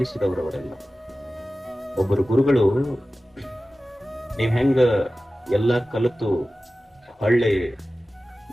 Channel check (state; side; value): normal; both; correlation 0.95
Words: ಒಬ್ಬರು ಗುರುಗಳು, ನೀವ್ ಹೆಂಗ ಎಲ್ಲ ಕಲಿತು ಹಳ್ಳಿ